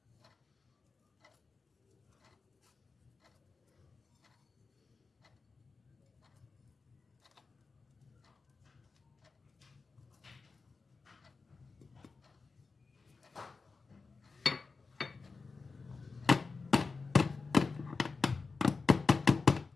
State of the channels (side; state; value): right; quieter; 4.3 dB